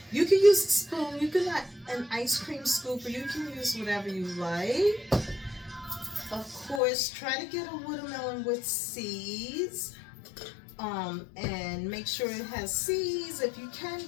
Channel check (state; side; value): drops out; right; at 6.8 s